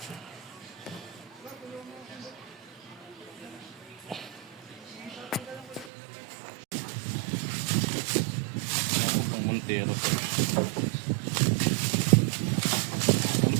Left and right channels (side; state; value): left; drops out; at 5.9 s